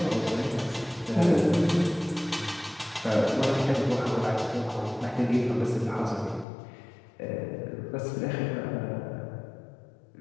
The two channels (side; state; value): right; drops out; at 6.5 s